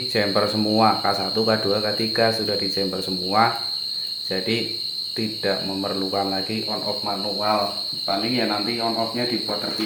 jumper semua, K1 K2 K3 sudah di jumper semua, jadi tidak memerlukan lagi on off manual. Paling ya nanti on off nya dibuat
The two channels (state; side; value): identical; both; correlation 1.00